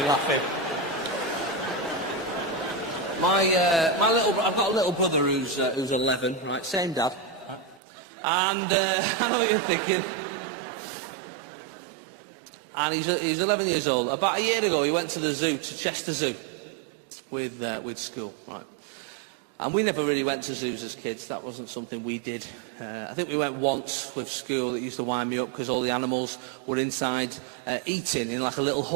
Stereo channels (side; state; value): left; drops out; at 7.8 s